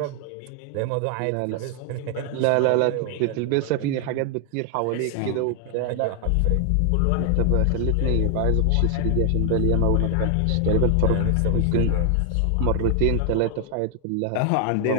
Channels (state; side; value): different; both; correlation 0.00